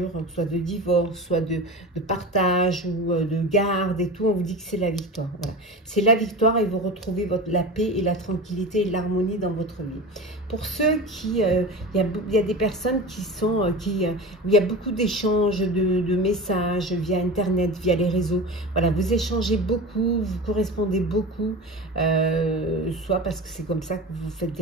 soit de divorce, soit de partage ou de garde et tout, on vous dit que c'est la victoire. Voilà. C'est la victoire et vous retrouvez la paix et la tranquillité et l'harmonie dans votre vie. Pour ceux qui, il y a des personnes qui sont, où il y a beaucoup d'échanges de messages via Internet, via les réseaux. Voilà, vous échangez beaucoup, vous correspondez beaucoup, soit parce que c'est comme ça que vous faites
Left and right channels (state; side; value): normal; both; correlation 0.30